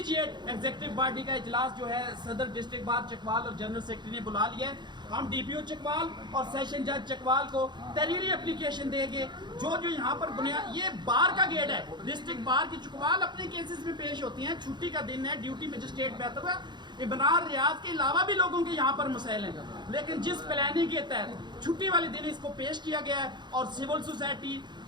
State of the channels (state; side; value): late; left; 0.21 ms